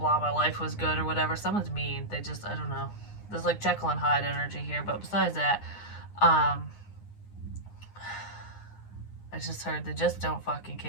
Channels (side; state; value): right; late; 9.7 ms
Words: my life was good, or whatever. Someone's mean. They just, I don't know. There's like Jekyll and Hyde energy here, but besides that, I just heard they just don't fucking